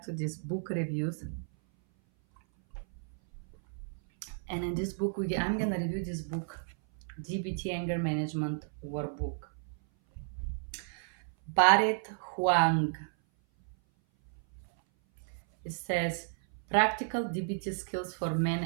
to this book reviews. And in this book I'm gonna review this book, DBT Anger Management Workbook. Barret Huang. It says practical DBT skills for men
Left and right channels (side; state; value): left; silent; 56 dB below the other